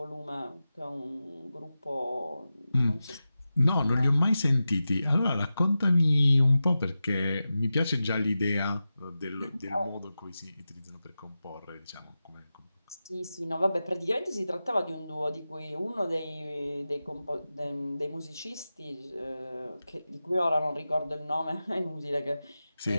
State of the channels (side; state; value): both; inverted; correlation -0.93